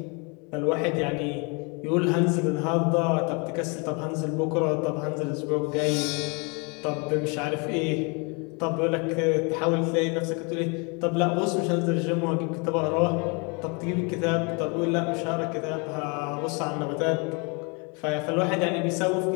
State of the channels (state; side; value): quieter; right; 32.2 dB